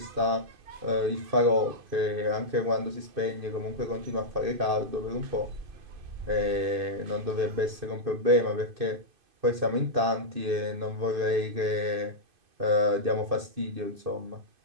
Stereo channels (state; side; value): late; left; 2.5 ms